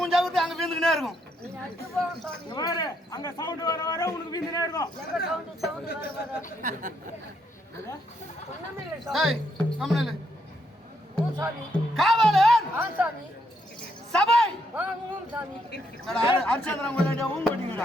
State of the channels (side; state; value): both; normal; correlation 0.76